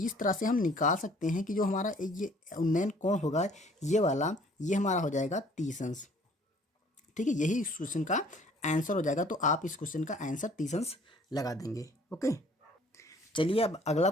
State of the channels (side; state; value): both; normal; correlation 0.56